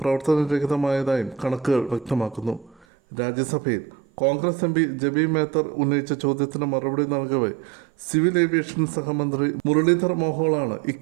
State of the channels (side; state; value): left; drops out; at 2.9 s